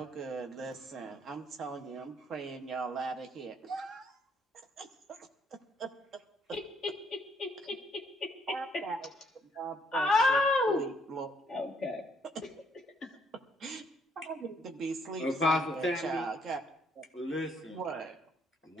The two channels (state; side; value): normal; both; correlation 0.68